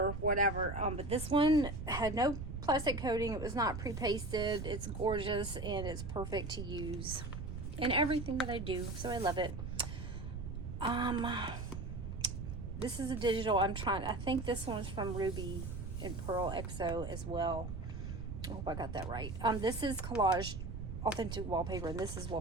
whatever. But this one had no plastic coating. It was not pre-pasted. It's gorgeous and it's perfect to use in everything that I do. So I love it. This is a digital. I think this one's from Ruby and Pearl XO as well. I hope I got that right. This is collage authentic wallpaper, and this is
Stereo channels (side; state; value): right; noise; rumble, 6 dB below the sound